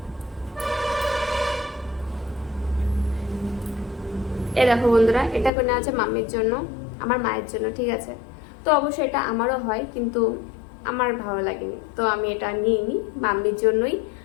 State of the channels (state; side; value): drops out; right; at 5.5 s